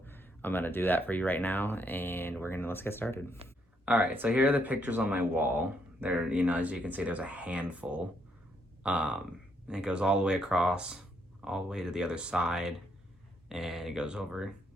I'm gonna do that for you right now, and let's get started. All right, so here are the pictures on my wall. There, as you can see, there's a handful. And it goes all the way across, all the way to the other side, and it goes over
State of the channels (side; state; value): both; normal; correlation 0.74